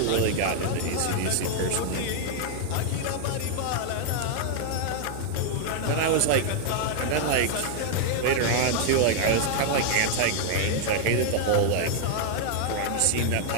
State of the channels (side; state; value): both; different; correlation 0.00